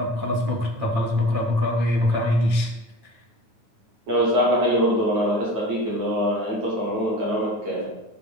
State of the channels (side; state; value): left; late; 9.0 ms